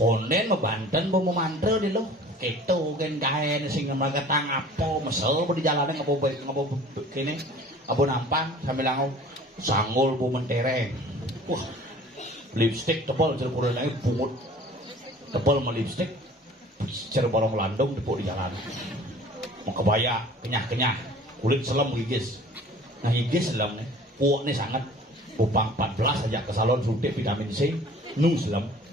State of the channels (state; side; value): normal; both; correlation 0.47